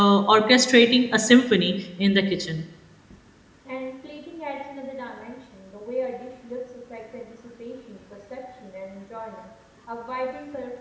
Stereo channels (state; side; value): identical; both; correlation 1.00